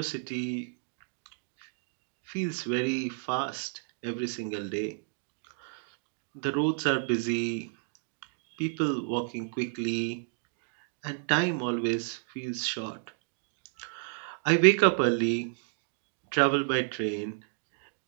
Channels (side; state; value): left; silent; digital silence